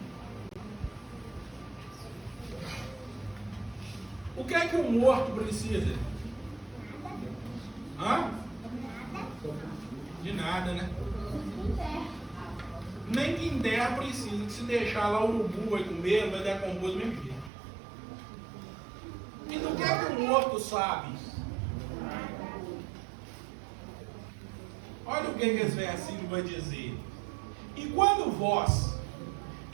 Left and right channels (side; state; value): left; drops out; at 17.5 s